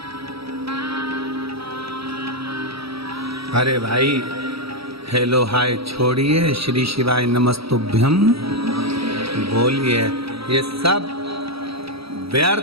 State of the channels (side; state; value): left; late; 0.76 ms